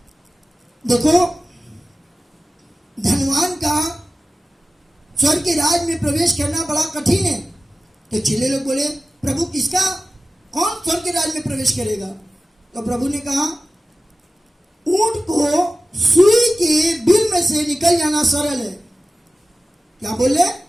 देखो धनवान का स्वर्ग के राज में प्रवेश करना बड़ा कठिन है। तो चेले लोग बोले, प्रभु किसका, कौन स्वर्ग के राज में प्रवेश करेगा। तो प्रभु ने कहा, ऊंट को सुई के बिल में से निकल जाना सरल है। क्या बोले,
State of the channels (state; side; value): normal; both; correlation 0.95